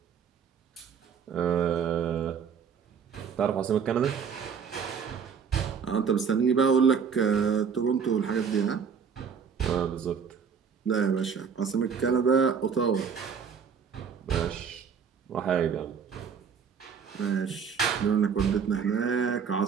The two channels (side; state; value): left; quieter; 6.6 dB